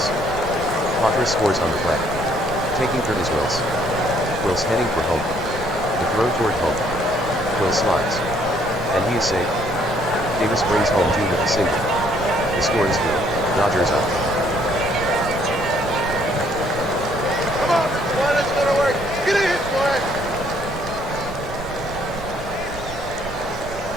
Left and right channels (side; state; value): right; noise; rumble, 14 dB below the sound